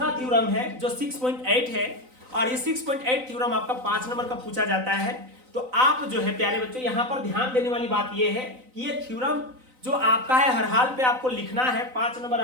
थ्योरम है जो 6.8 है, और ये 6.8 थ्योरम आपका 5 नंबर का पूछा जाता है। तो आप जो है प्यारे बच्चों यहाँ पर ध्यान देने वाली बात ये है कि ये थ्योरम जो आपका है हर हाल पे आपको लिखना है, 5 नंबर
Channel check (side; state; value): left; late; 3.9 ms